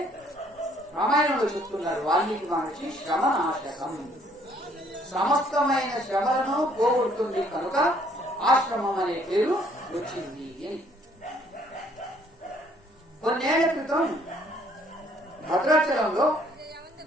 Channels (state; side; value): normal; both; correlation 0.63